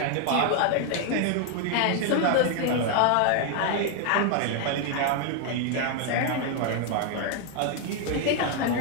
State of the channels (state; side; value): different; both; correlation 0.01